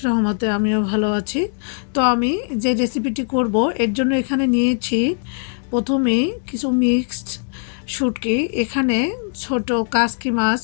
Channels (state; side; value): silent; right; 63 dB below the other